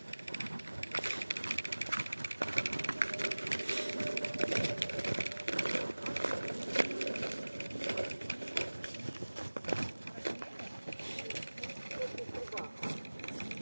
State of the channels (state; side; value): inverted; both; correlation -1.00